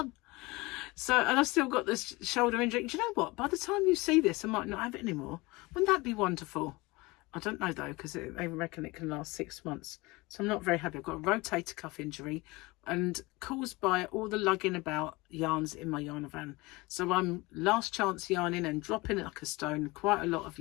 And I've still got this shoulder injury. Do you know what? By the time you see this, I might not have it anymore. Wouldn't that be wonderful? I don't know though, because they reckon it can last 6 months. So I'm not very happy. I've got a rotator cuff injury and caused by all the lugging about yarns in my yarn van. So I'm last chance yarning and dropping it like a stone, quite a lot of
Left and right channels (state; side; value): quieter; right; 23.0 dB